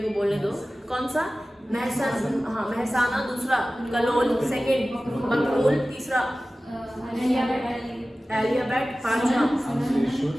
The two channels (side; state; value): both; normal; correlation 0.96